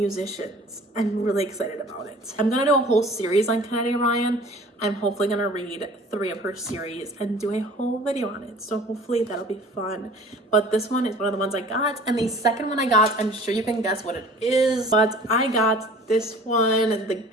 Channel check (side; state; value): both; normal; correlation 0.47